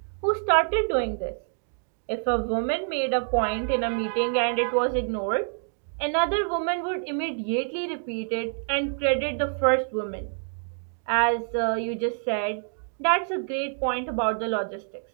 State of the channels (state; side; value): silent; left; digital silence